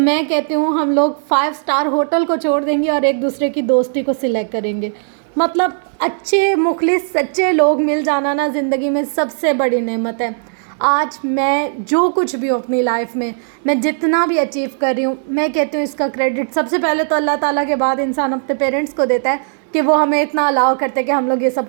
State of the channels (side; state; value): left; silent; digital silence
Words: कहती हूँ हम लोग 5 स्टार होटल को छोड़ देंगे और एक दूसरे की दोस्ती को सिलेक्ट करेंगे। मतलब अच्छे मुखलिस सच्चे लोग मिल जाना ना ज़िंदगी में सबसे बड़ी नेमत है। आज मैं जो कुछ भी हूँ अपनी लाइफ में, मैं जितना भी अचीव कर रही हूँ, मैं कहती हूँ इसका क्रेडिट सबसे पहले तो अल्लाह ताला के बाद इंसान अपने पेरेंट्स को देता है, कि वो हमें इतना अलाउ करते कि हम लोग ये सब